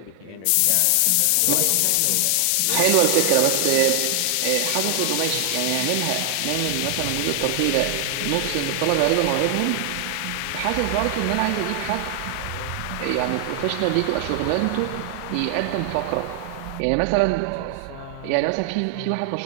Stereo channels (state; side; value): different; both; correlation 0.00